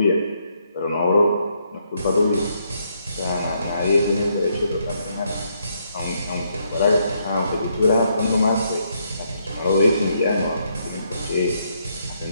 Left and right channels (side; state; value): both; inverted; correlation -0.75